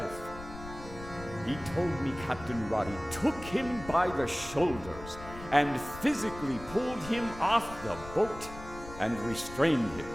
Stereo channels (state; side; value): noise; left; rumble, 14 dB below the sound